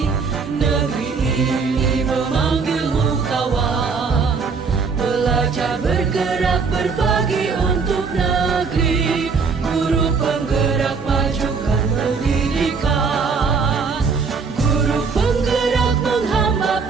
Negeri ini memanggilmu kawan. Belajar, bergerak, berbagi untuk negeri. Guru penggerak, majukan pendidikan. Guru penggerak menghamba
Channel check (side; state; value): left; quieter; 5.1 dB